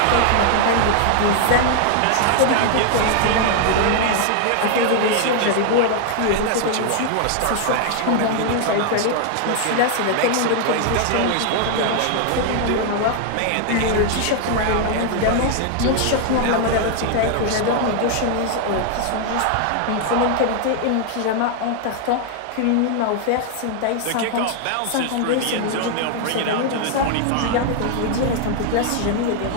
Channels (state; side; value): different; both; correlation 0.00